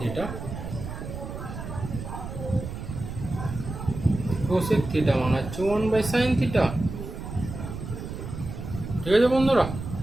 কোসেক থিটা মানে হচ্ছে 1/sin থিটা, ঠিক আছে বন্ধুরা?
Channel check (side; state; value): right; noise; rumble, 8 dB below the sound